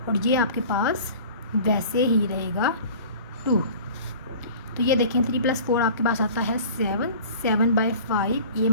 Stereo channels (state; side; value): inverted; both; correlation -0.43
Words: और ये आपके पास वैसे ही रहेगा 2। तो ये देखें 3 + 4 आपके पास आता है 7, 7/5, ये